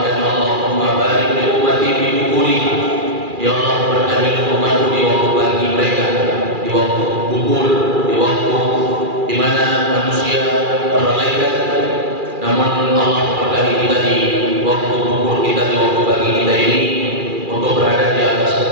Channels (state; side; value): late; left; 2.4 ms